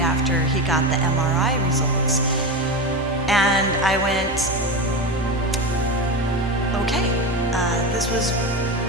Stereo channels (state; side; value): normal; both; correlation 0.21